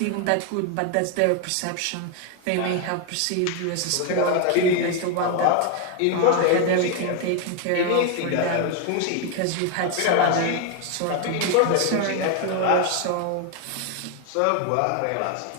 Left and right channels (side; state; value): both; different; correlation 0.01